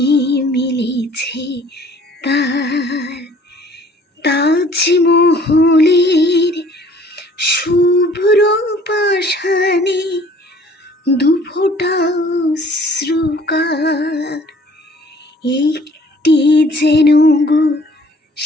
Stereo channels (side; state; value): both; normal; correlation 0.54